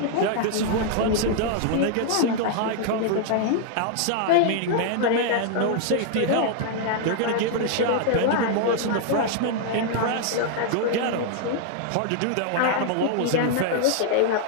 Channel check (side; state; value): both; different; correlation 0.00